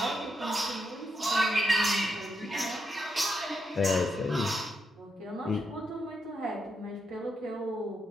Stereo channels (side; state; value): both; normal; correlation 0.82